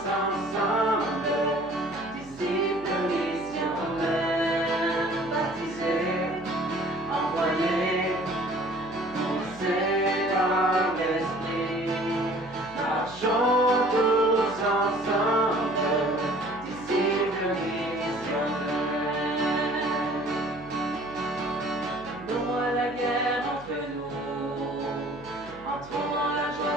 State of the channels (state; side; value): noise; right; hum, 21 dB below the sound